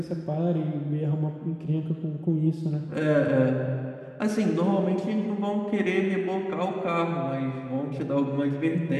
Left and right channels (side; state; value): both; identical; correlation 1.00